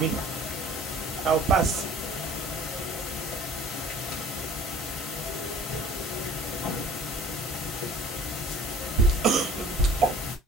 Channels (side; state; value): both; normal; correlation 0.48